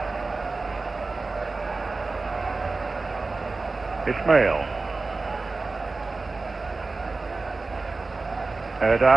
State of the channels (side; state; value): left; quieter; 3.7 dB